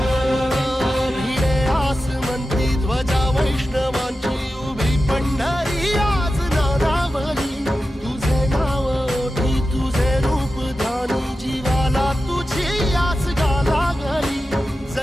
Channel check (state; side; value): normal; both; correlation 0.92